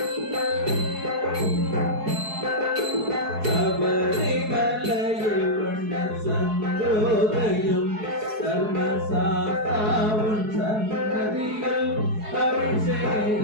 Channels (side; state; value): left; late; 4.7 ms